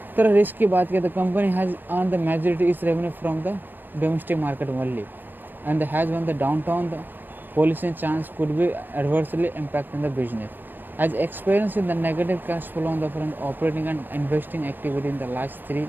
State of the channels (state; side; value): late; left; 0.092 ms